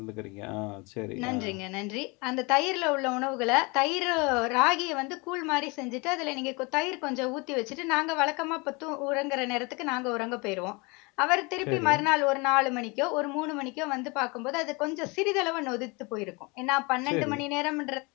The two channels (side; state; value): right; quieter; 27.9 dB